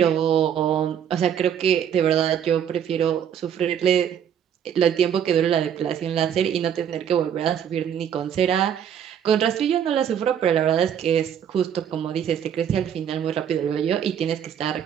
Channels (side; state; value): left; quieter; 8.9 dB